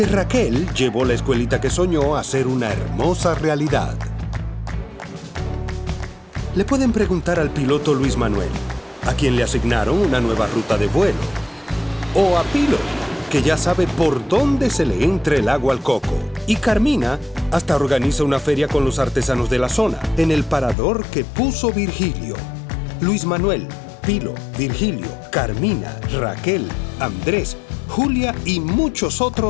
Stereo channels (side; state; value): right; drops out; at 20.8 s